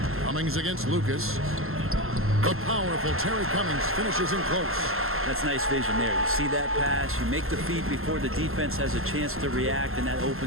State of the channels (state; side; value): late; left; 0.62 ms